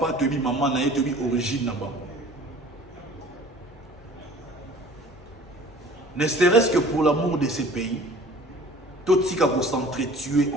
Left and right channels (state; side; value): normal; both; correlation 0.47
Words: toyebi maman na ye, toyebi origine na ba. Ne serait-ce que pour l'amour de ces pays, tout ce qui a s'entretuer